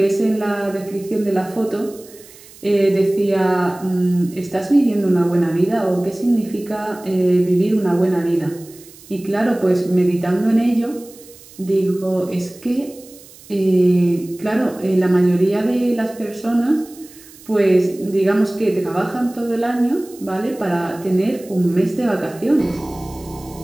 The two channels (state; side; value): noise; right; hiss, 22 dB below the sound